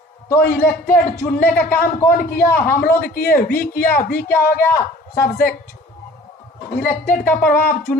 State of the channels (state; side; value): normal; both; correlation 0.48